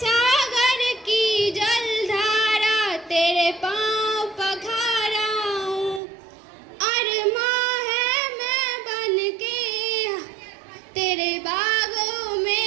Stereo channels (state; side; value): drops out; left; at 6.0 s